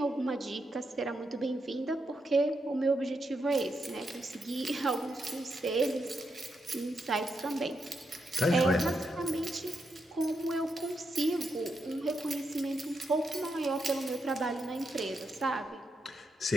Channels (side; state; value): both; normal; correlation 0.83